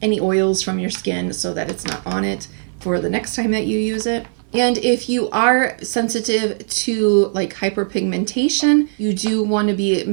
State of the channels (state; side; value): silent; left; digital silence